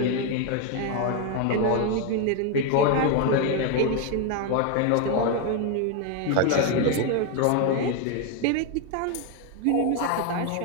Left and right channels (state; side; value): different; both; correlation 0.01